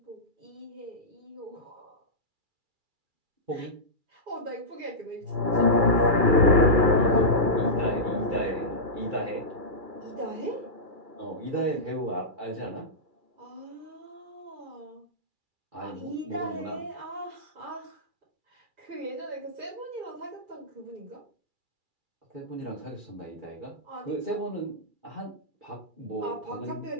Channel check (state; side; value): late; left; 2.3 ms